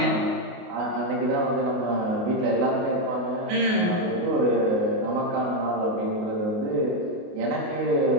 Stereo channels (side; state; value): left; late; 28 ms